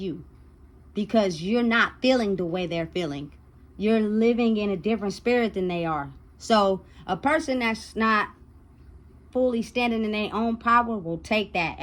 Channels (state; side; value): identical; both; correlation 1.00